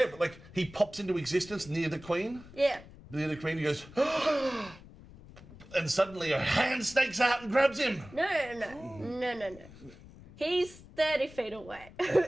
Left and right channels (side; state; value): left; noise; rumble, 19 dB below the sound